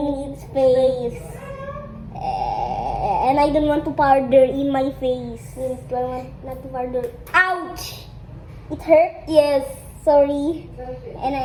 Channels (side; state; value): both; identical; correlation 1.00